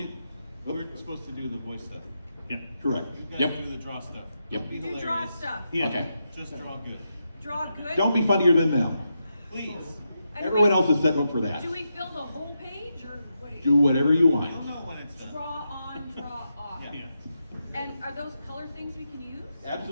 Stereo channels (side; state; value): both; inverted; correlation -0.85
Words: me, we're supposed to do the voice stuff. Yeah. Correct. You guys Yep. do the draw stuff. Yep. Don't be You draw hilarious. stuff. Okay. Just draw good. Draw good. Don't be funnier than them. Please. And Everyone we- else is set up for that. Do we fill the whole page or what do you Do whatever you I want. don't know when it's done. draw on, draw off? Yeah. And are those color things we can use?